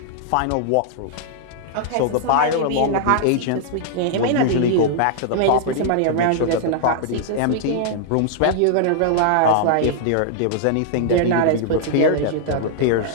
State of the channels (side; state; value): both; different; correlation -0.01